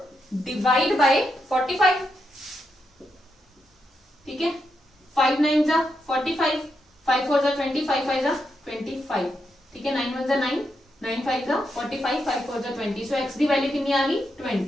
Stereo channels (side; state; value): both; normal; correlation 0.83